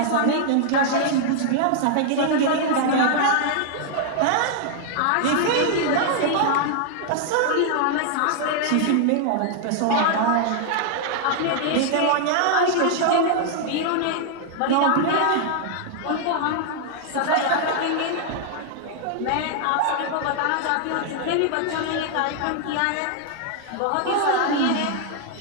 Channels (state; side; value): different; both; correlation 0.00